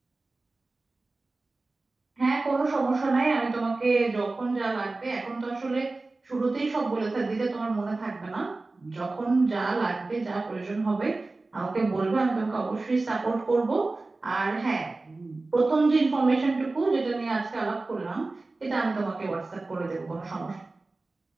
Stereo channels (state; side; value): quieter; left; 3.3 dB